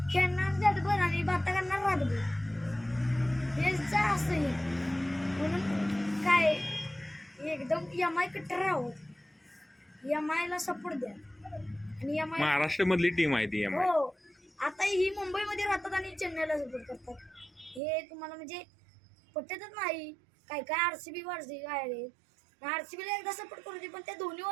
खेळणार रातभर आणि बाता करणार रातभर हेच असं म्हणून काय एकदम MI कट्टर राहत. MI ला सपोर्ट द्या आणि MI महाराष्ट्र मधली टीम आहे ती MI. हो आता ही मुंबईमध्ये राहतात आणि चेन्नईला सपोर्ट करतात. हे तुम्हाला म्हणजे पटतच नाही. काय RCB आहे RCBला एकदा सपोर्ट करू दे पण त्या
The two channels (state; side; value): drops out; left; at 17.8 s